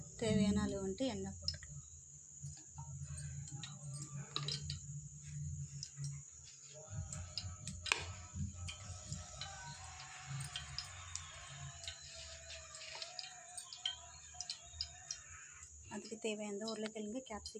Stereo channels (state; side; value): identical; both; correlation 1.00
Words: தேவையான அளவு வந்துட்டு எண்ணெய் போட்டுக்கலாம். அதுக்கு தேவையான உருளைக்கிழங்கு